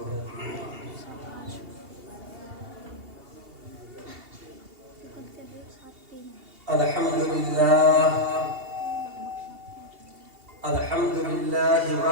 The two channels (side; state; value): left; late; 2.8 ms